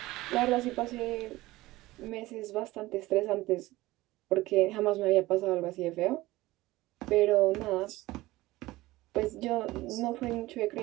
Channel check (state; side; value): quieter; left; 18.5 dB